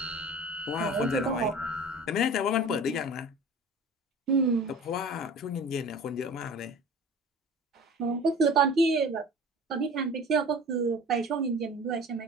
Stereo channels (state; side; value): normal; both; correlation 0.40